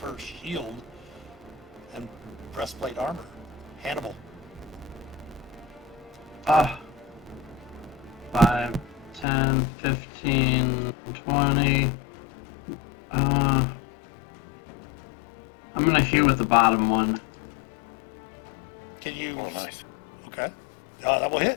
her shield and breastplate armor. Hannibal. 5, 10, 15, 20. I'm gonna hit with the bottom one. Can you? Oh, nice. Okay. That will hit.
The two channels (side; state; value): right; drops out; at 9.2 s